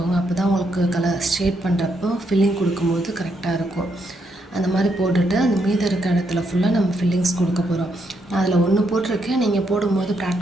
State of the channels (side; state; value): both; normal; correlation 0.78